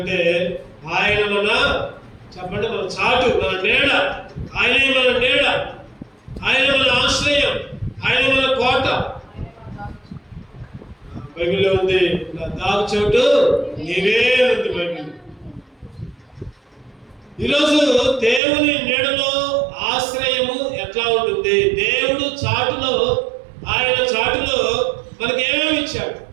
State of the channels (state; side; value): drops out; left; at 18.4 s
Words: ఆయన మన చెప్పండి, మన చాటు, మన నీడ, ఆయనే మన నీడ, ఆయన మన ఆశ్రయం, ఆయన మన కోట. బైబిల్లో ఉంది, నా దాగు చోటు నీవే ఉంది బైబిల్. ఈరోజు దేవుని నీడలో ఆశ్రయము ఎట్లా ఉంటుంది? దేవుడు చాటులో, ఆయన చాటులో మనకి ఏమేమి ఇచ్చాడు?